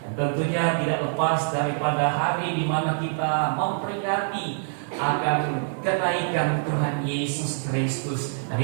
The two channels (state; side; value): silent; left; digital silence